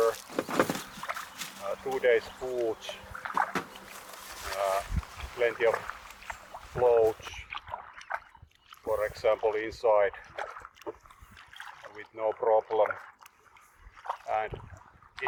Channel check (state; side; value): identical; both; correlation 1.00